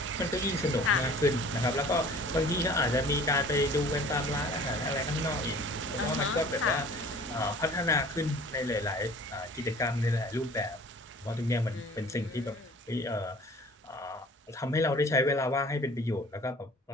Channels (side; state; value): both; normal; correlation 0.48